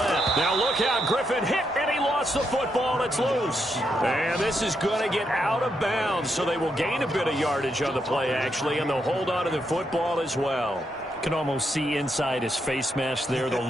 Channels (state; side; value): normal; both; correlation 0.80